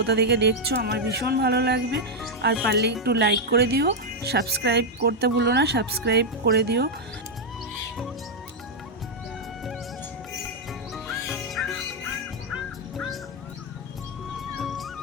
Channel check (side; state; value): both; normal; correlation -0.01